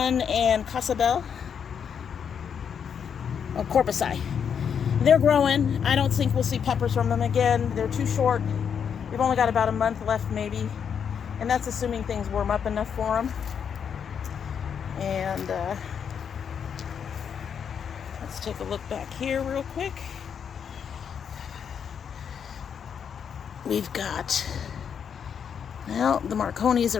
and Casabel. Or Corpusci. They're growing. I don't think we'll see peppers from them again. They're too short. We've only got about a month left, maybe. And that's assuming things warm up enough for them. And let's take a look back here real quick. We've got, well, the Marconis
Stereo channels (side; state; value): right; quieter; 7.5 dB